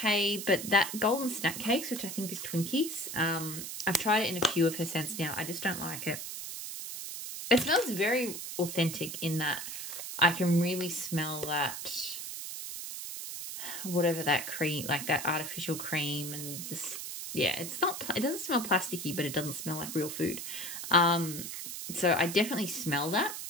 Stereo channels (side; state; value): right; noise; hiss, 7 dB below the sound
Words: but that golden snack cakes, which I think is Twinkies, I've tried it in a few of her scents now. I just don't like it. It smells very authentic in that I can really smell that, whatever that cream, like that artificial cream, and just, yeah, it doesn't smell plasticky, but it doesn't smell like real food. So I definitely smell that,